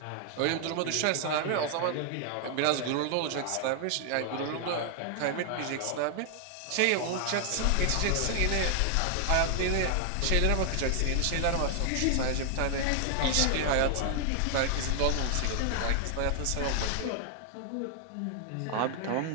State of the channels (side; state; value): both; different; correlation 0.00